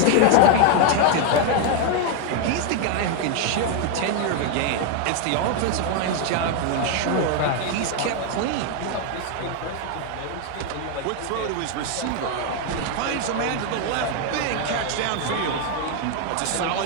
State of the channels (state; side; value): different; both; correlation 0.01